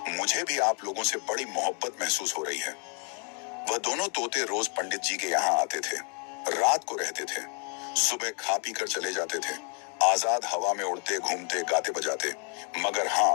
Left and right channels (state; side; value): quieter; right; 39.4 dB